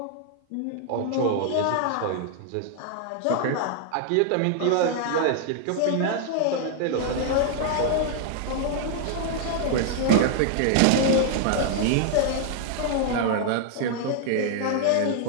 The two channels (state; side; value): different; both; correlation 0.00